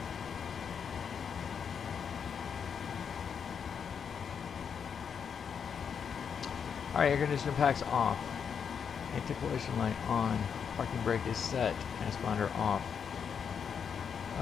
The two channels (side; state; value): right; quieter; 7.0 dB